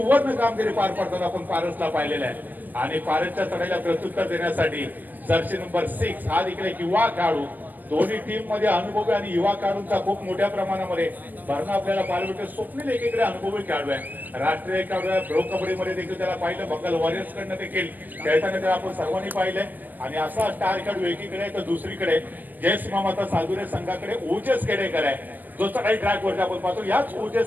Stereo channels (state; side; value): late; left; 0.087 ms